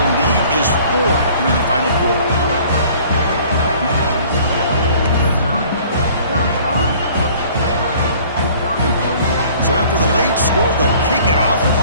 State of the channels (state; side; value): inverted; both; correlation -0.52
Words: lead is 4 here in the final quarter. So after the late score, they'll kick it off and